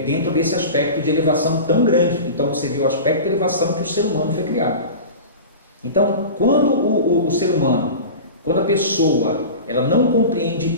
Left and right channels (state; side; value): inverted; both; correlation -0.32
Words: dentro desse aspecto de elevação tão grande. Então você vê o aspecto de elevação que o ser humano foi criado. Então, quando o ser humano, quando a pessoa, ela não compreende